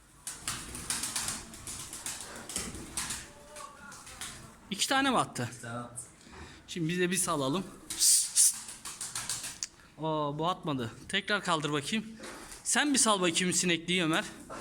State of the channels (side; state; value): both; identical; correlation 1.00